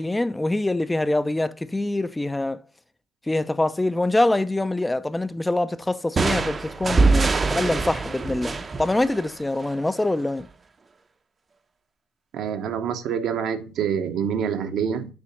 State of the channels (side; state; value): both; normal; correlation 0.89